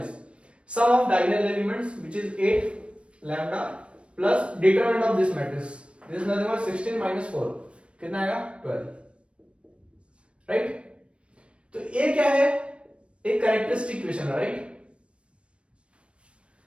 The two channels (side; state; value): left; late; 0.059 ms